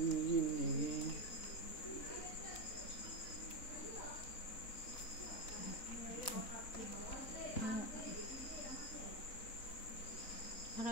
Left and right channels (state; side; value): late; right; 3.9 ms